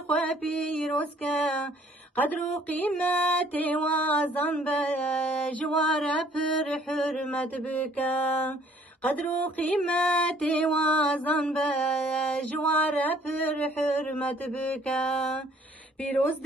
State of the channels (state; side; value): normal; both; correlation 0.59